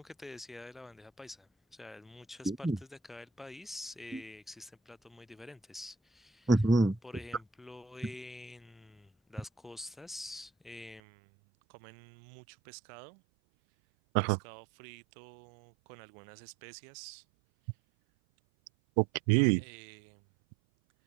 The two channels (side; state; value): left; drops out; at 11.0 s